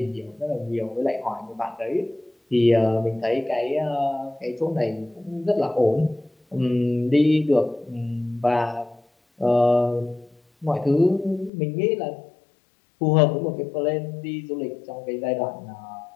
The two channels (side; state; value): right; drops out; at 11.5 s